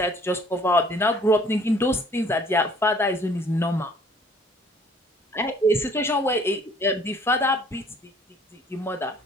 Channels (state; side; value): normal; both; correlation 0.56